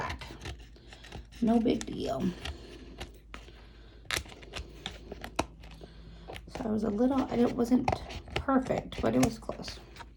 No big deal. So I was a little, it wasn't perfect, but it was close.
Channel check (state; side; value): identical; both; correlation 1.00